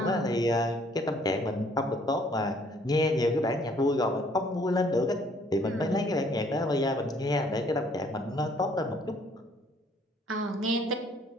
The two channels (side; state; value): both; normal; correlation 0.62